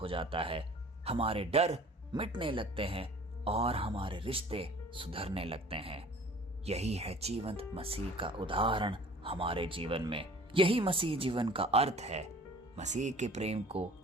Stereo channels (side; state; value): both; normal; correlation 0.47